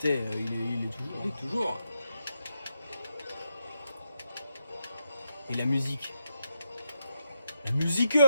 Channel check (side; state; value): both; inverted; correlation -0.82